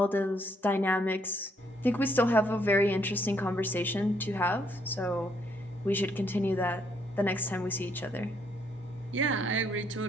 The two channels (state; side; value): normal; both; correlation 0.71